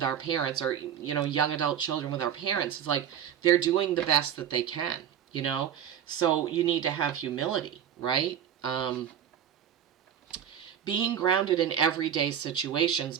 our parents, or, young adult children with our parents. It's like they're doing the best that they can, So you need to have humility, right? Being grounded in everyday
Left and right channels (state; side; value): quieter; left; 9.4 dB